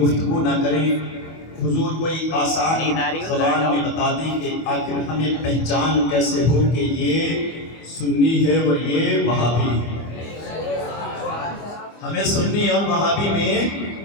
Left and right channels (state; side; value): late; right; 25 ms